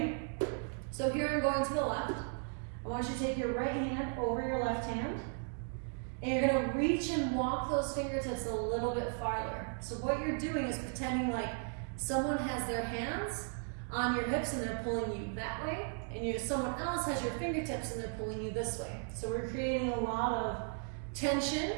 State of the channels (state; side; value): silent; left; 54 dB below the other